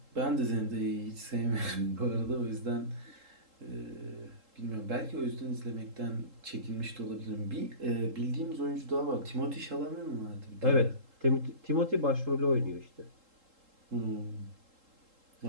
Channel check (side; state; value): left; late; 3.7 ms